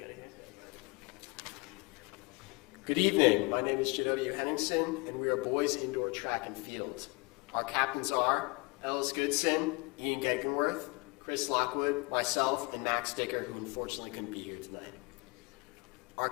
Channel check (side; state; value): right; quieter; 27.6 dB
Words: Good evening, my name is Janodia Henningsen, and we are boys indoor track and field. Our captains are Ellis Goodson, Ian Gegenworth, Chris Lockwood, myself, and Max Dicker, who unfortunately couldn't be here tonight.